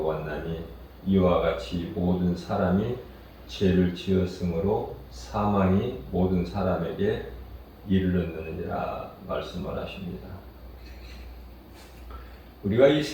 이와 같이 모든 사람이 죄를 지었으므로 사망이 모든 사람에게 이르렀느니라 말씀을 하십니다. 우리가 이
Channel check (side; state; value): both; identical; correlation 1.00